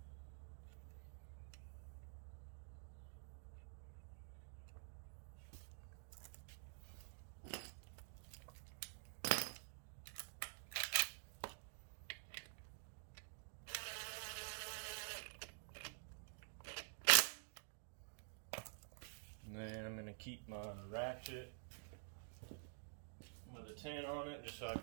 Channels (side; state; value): left; silent; digital silence